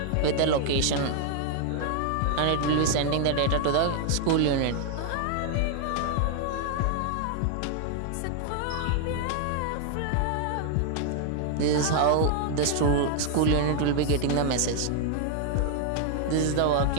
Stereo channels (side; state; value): both; different; correlation 0.00